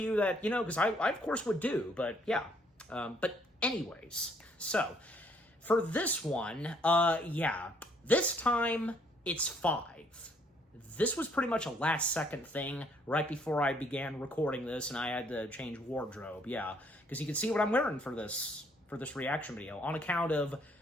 that, because I of course would do, but, yeah. But anyways, so, for this one, yeah, this time, it's 5. This was pretty much a last-second thing right before I began recording this, and I had to change wardrobe, yeah. Because you can see what I'm wearing for this reaction video, on account of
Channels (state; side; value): normal; both; correlation 0.66